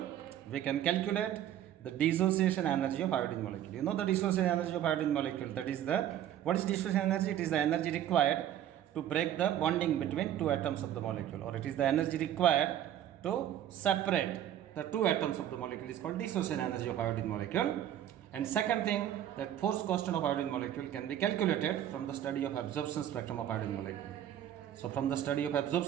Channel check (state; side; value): quieter; left; 11.2 dB